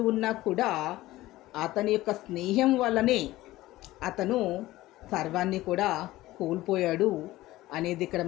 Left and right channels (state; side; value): quieter; right; 17.0 dB